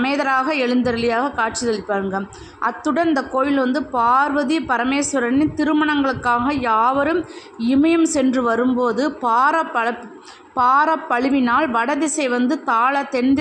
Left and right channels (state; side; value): identical; both; correlation 1.00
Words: எழுந்தருளியாக காட்சியளிப்பாருங்க. அத்துடன் இந்த கோவில் பார்வதி பரமேஸ்வரனின் திருமணங்களுக்காக யாவரும் இமயம் சென்று வரும்போது பாரப்பழுவினால் வடதிசை தாழ தென்